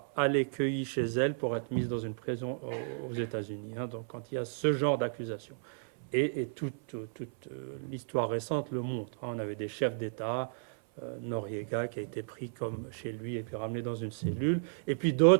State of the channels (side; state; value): left; silent; 55 dB below the other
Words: allée cueillie chez elle pour être mise dans une prison aux États-Unis. Hein, donc quand il y a ce genre d'accusation. Et toute l'histoire récente le montre. Hein, on avait des chefs d'État, Noriega qui a été pris comme chez lui et puis ramené dans une cellule. Et puis